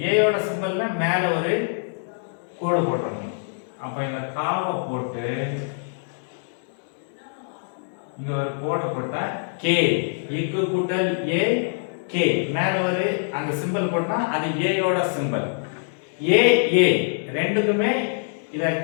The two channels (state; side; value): silent; right; digital silence